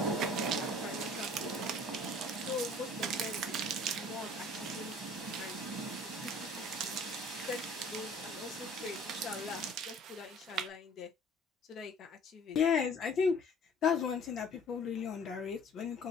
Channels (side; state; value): both; normal; correlation 0.50